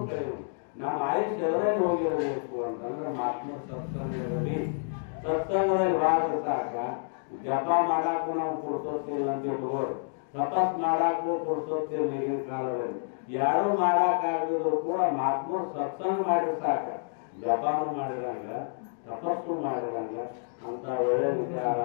ಕಳೆಯುವುದು. ನಮ್ಮ ಆಯುಷ್ಯ ಎಲ್ಲರಲ್ಲಿ ಹೋಗಿರಬೇಕು ಅಂತಂದ್ರೆ ಮಹಾತ್ಮರ ಸತ್ಸಂಗದಲ್ಲಿ ಭಾಗ ಸಾಕ. ಜಪ ಮಾಡಾಕು ನಾವು ಪುರುಸೋತ್ತಿಲ್ಲ ಅಂತ ಇಟ್ಕೋರು, ತಪಸ್ ಮಾಡಾಕು ಪುರುಸೋತ್ತಿಲ್ಲ ಈಗಿನ ಕಾಲದಲ್ಲಿ. ಯಾರು ಮಾಡಾಕಾಗದಿದ್ರು ಕೂಡ ಮಹಾತ್ಮರು ಸತ್ಸಂಗ ಮಾಡಿದ್ರೆ ಸಾಕ. ಜಪಾನು ಮಾಡಿರಂಗ, ತಪಸ್ಸು ಮಾಡಿರಂಗ ಅಂತ ಒಳ್ಳೆ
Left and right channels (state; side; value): silent; right; digital silence